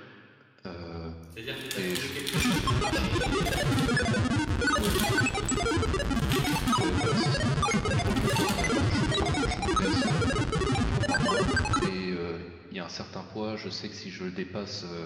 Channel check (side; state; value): both; identical; correlation 1.00